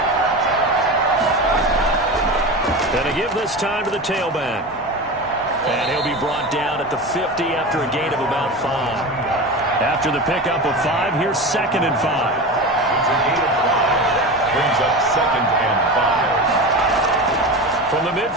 Going to give this time to the tailback. And he'll be brought down at the 50 after a gain of about 5. After the pickup of 5, here's 2nd and 5. It's a gain of 5. Brings up 2nd and 5. From the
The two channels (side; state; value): both; normal; correlation 0.27